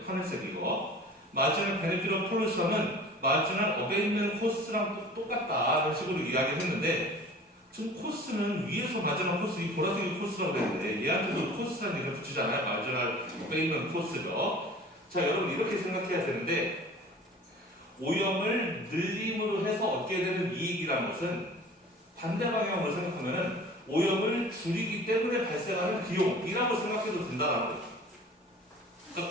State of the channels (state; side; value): normal; both; correlation 0.43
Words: 하늘색 이거 마지막 베네핏 오브 폴루션은 마지막 어베인먼트 코스트랑 똑같다라는 식으로 이야기를 했는데, 지금 코스는 위에서 마지막 코스, 이 보라색이 코스라고 그랬는데 얘한테도 코스라는 얘기를 붙이잖아요. 마지막 어베인먼트 코스죠. 자, 여러분 이렇게 생각해야 되는데, 오염을 늘림으로 해서 얻게 되는 이익이라는 것은 반대 방향으로 생각하면 오염을 줄이기 때문에 발생하는 비용이라고 생각해도 된다는 거예요.